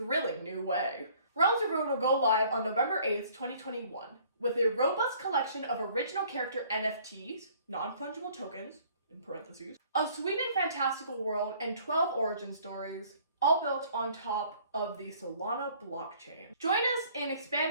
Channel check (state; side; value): inverted; both; correlation -0.56